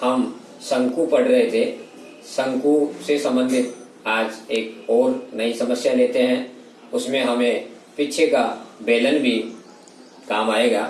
हम शंकु पढ़ रहे थे। शंकु से संबंधित आज एक और नई समस्या लेते हैं। उसमें हमें पीछे का बेलन भी काम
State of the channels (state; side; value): identical; both; correlation 1.00